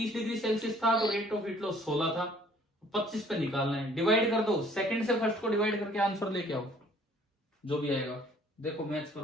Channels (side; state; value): both; normal; correlation 0.57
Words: डिग्री सेल्सियस था तो रेट ऑफ हीट लॉस 16 था, 25 पे निकालना है। डिवाइड कर दो, सेकंड से फर्स्ट को डिवाइड करके आंसर लेके आओ, जो भी आएगा। देखो मैच